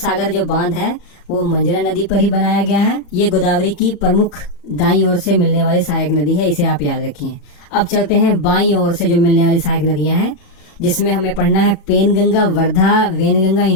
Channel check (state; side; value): late; right; 34 ms